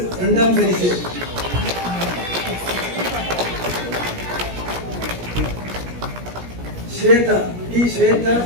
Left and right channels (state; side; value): late; left; 17 ms